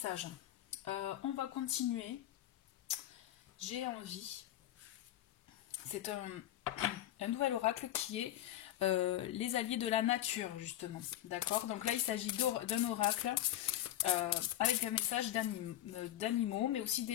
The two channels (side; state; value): right; quieter; 13.3 dB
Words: On va continuer. J'ai envie. C'est un nouvel oracle qui est les alliés de la nature, justement. D'accord? Donc là, il s'agit d'un oracle avec un message d'animaux, mais aussi